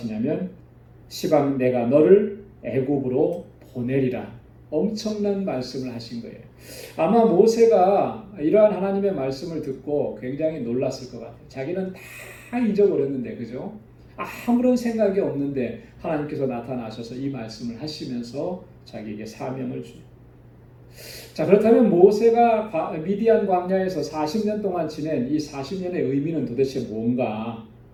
시방 내가 너를 애굽으로 보내리라. 엄청난 말씀을 하신 거예요. 아마 모세가 이러한 하나님의 말씀을 듣고 굉장히 놀랐을 것 같아요. 자기는 다 잊어버렸는데 그죠? 아무런 생각이 없는데 하나님께서 나타나셔서 이 말씀을 하시면서 자기에게 사명을 주죠. 자, 그렇다면 모세가 미디안 광야에서 40년 동안 지낸 이 40년의 의미는 도대체 뭔가?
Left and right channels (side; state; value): both; identical; correlation 1.00